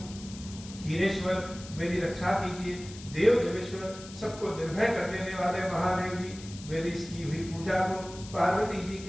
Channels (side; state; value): left; noise; hiss, 16 dB below the sound